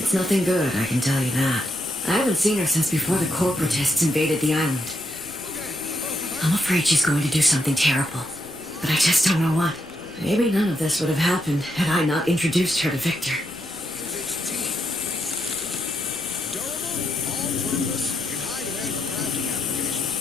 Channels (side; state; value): left; noise; rumble, 27 dB below the sound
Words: nothing good, I can tell you that. I haven't seen her since before the corporatists invaded the island. I'm afraid she's going to do something terrible. But I just don't know what. Maybe none of this would have happened had I not introduced her to Victor.